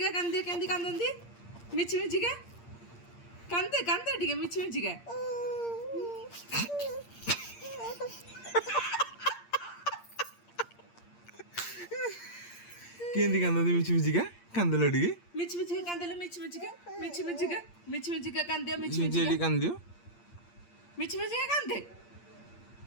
कांदे कैंदी कांदन दी मिठी मिठी का कांदे कांदे ठीक है मिठी मिठी का कैंदी कांदन दी मिठी मिठी का कांदल अड़ी मिठी मिठी का कांदल मिठी मिठी का मिठी मिठी का कांदे मिठी मिठी मिठी का कांदियो मिठी मिठी का कांदे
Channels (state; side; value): late; right; 8.6 ms